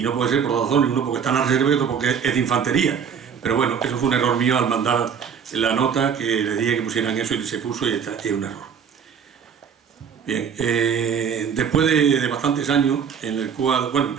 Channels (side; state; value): left; quieter; 7.1 dB